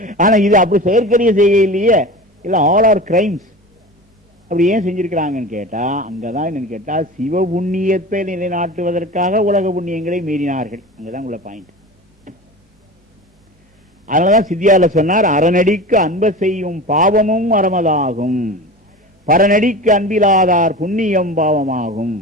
ஆனா இது அப்படி செயற்கரிய செய்ய இல்லையே, இல்ல ஆல் ஆர் கிரைம்ஸ். அப்படி ஏன் செஞ்சிருக்கிறாங்கன்னு கேட்டா, அங்கதான் என்னன்னு கேட்டா, சிவ புண்ணியத்தை நிலைநாட்டுவதற்காக உலக புண்ணியங்களை மீறினார்கள். அங்கதான் உள்ள பாயிண்ட். அதனாலதான் சித்தியால சொன்னார், அறநடிக்கு அன்ப செய்யும் பாவமும் அறமதாகும், பரநடிக்கு அன்பிலாதார் புண்ணியம் பாவமாகும்.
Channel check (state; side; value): normal; both; correlation 0.32